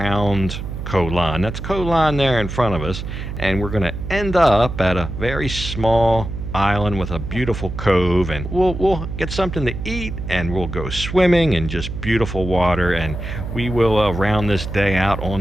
Koh Lan. That's Koh Lan there in front of us, and we're going to end up at a very small island with a beautiful cove, and we'll get something to eat, and we'll go swimming in just beautiful water, and we will round this day out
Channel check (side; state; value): right; noise; hum, 7 dB below the sound